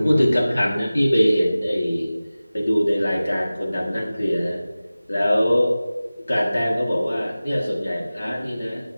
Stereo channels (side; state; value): both; inverted; correlation -0.97